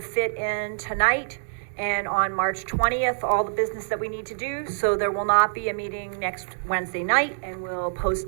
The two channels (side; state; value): left; silent; digital silence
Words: in tonight and on March 20th, all the business that we need to do, so there will not be a meeting next Wednesday night, and we'll